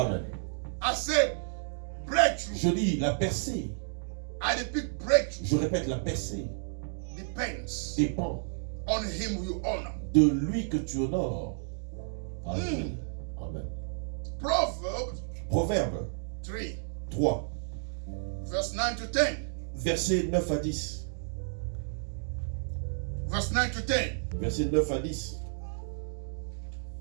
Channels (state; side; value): silent; left; digital silence